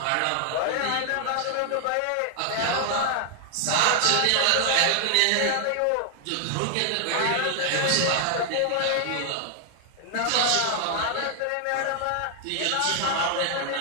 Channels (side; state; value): both; different; correlation 0.00